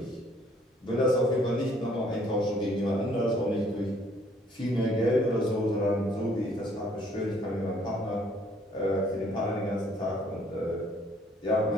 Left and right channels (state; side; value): normal; both; correlation 0.62